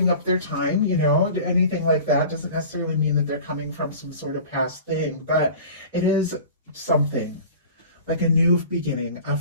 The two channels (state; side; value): inverted; both; correlation -0.40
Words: up their time, anything like that. Doesn't necessarily mean that they're coming from some sort of past thing, but it is something like a new beginning, a